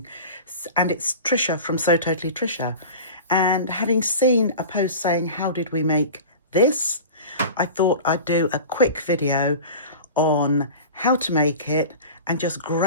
and it's Trisha from So Totally Trisha. And having seen a post saying, how did we make this? I thought I'd do a quick video on how to make it and just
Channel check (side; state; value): both; inverted; correlation -0.35